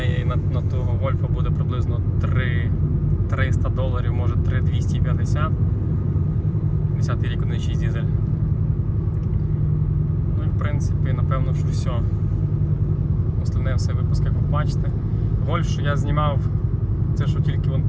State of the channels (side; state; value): both; identical; correlation 1.00